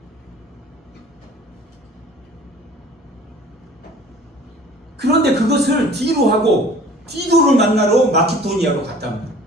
그런데 그것을 뒤로 하고 디도를 만나러 마케도니아로 갔단 말이에요.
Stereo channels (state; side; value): normal; both; correlation 0.48